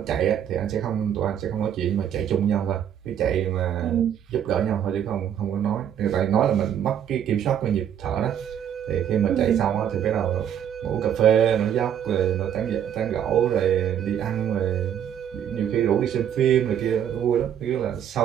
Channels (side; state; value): left; quieter; 9.4 dB